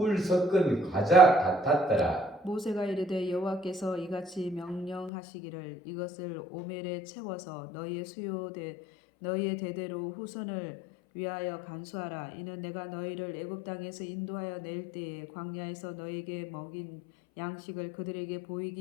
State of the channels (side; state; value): right; drops out; at 5.1 s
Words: 섞은 과자 같았더라. 모세가 이르되 여호와께서 이같이 명령하시기를 이것을 오멜에 채워서 너희의 대대로 후손을 위하여 간수하라. 이는 내가 너희를 애굽 땅에서 인도하여 낼 때에 광야에서 너희에게 먹인 양식을 그들에게